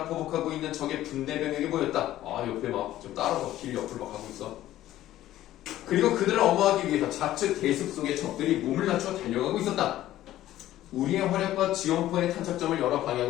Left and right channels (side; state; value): right; quieter; 14.0 dB